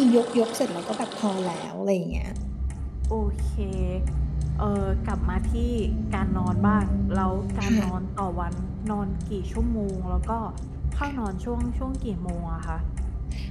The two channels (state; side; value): identical; both; correlation 1.00